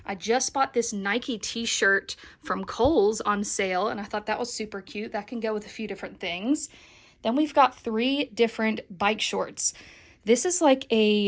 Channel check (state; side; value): identical; both; correlation 1.00